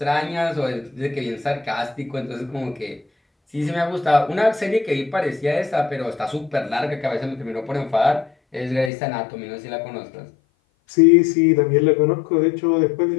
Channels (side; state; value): right; drops out; at 8.9 s